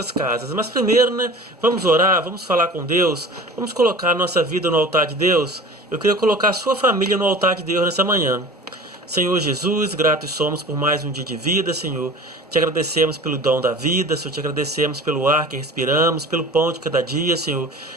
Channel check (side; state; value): both; normal; correlation 0.40